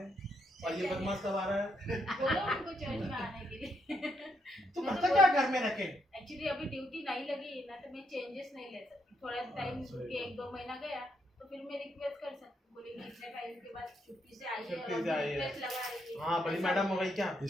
और ये बदमाश कब आ रहा है? बोलो उनको चर्च में आने के लिए। तू मैं तो करता क्या घर में रखे? एक्चुअली अभी ड्यूटी नहीं लगी ना, तो मैं चेंजेस नहीं ले सकती। थोड़ा टाइम के 1-2 महीना गया तो फिर मैं रिक्वेस्ट कर सकती हूँ, बोलेंगे इतने टाइम के बाद छुट्टी से आई है छुट्टी और से आई है। रिक्वेस्ट लगा रही है। हाँ बड़ी मैडम हो गई क्या?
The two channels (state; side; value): normal; both; correlation 0.77